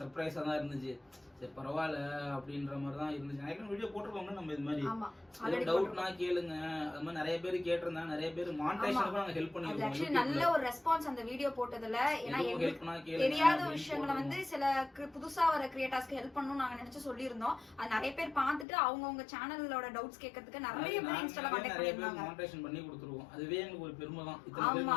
தான் இருந்துச்சு. சரி பரவாயில்ல அப்படின்ற மாதிரி தான் இருந்துச்சு. நிறைய வீடியோ போட்டிருக்கோங்க நம்ம இது மாதிரி. டவுட்னா கேளுங்க, அது மாதிரி நிறைய பேர் கேட்டிருந்தாங்க. நிறைய பேர் மானிடைசேஷனுக்கு நாங்க ஹெல்ப் பண்ணிருக்கோம். ஆக்சுவலி நல்ல ஒரு ரெஸ்பான்ஸ் அந்த வீடியோ போட்டதுல. ஏன்னா தெரியாத விஷயங்களை வந்து சில புதுசா வர கிரியேட்டர்ஸ்க்கு ஹெல்ப் பண்ணணும் நாங்க நினைச்சு சொல்லியிருந்தோம். அது நிறைய பேர் பார்த்துட்டு அவங்க சேனலோட டவுட்ஸ் கேட்கறதுக்கு நிறைய பேர் இன்ஸ்டால கான்டாக்ட் பண்ணிருந்தாங்க. மானிடைசேஷன் பண்ணி கொடுத்துருவோம். அதுவே எங்களுக்கு ஒரு பெருமை தான். ஆமா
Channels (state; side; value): drops out; right; at 18.7 s